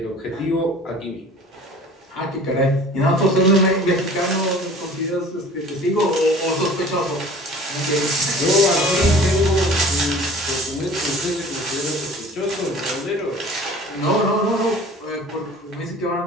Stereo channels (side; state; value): both; normal; correlation 0.45